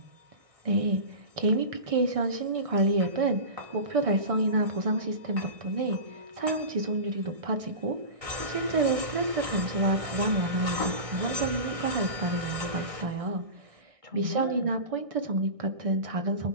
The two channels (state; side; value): late; left; 1.6 ms